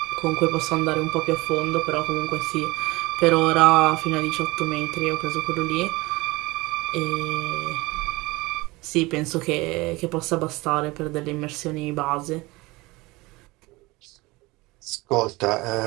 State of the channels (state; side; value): quieter; left; 22.2 dB